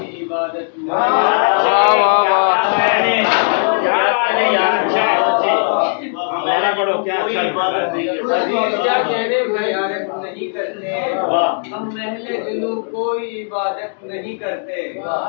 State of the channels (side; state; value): right; silent; digital silence